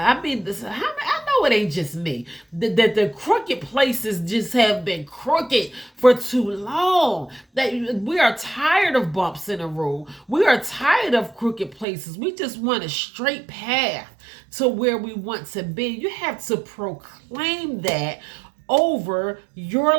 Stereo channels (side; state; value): left; drops out; at 11.9 s